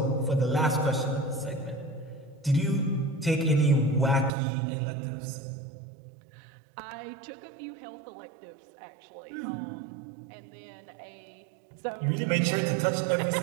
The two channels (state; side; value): drops out; left; at 4.3 s